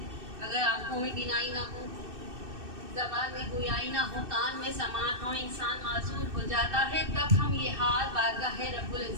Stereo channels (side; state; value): left; late; 2.6 ms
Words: اگر آنکھوں میں بینائی نہ ہو، زبان میں گویائی نہ ہو، کان میں سماعت ہو، انسان معذور ہو جاتا ہے، تب ہم یہ ہاتھ بارگاہ رب